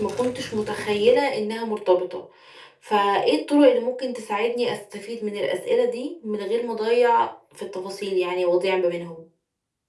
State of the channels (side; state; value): both; identical; correlation 1.00